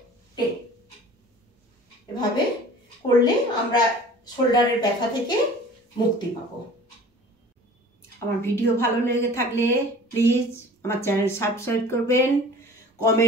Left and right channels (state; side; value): normal; both; correlation 0.44